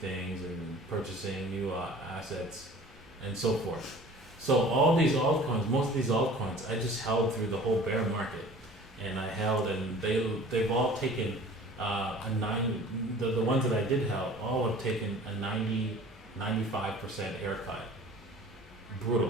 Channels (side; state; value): both; normal; correlation 0.46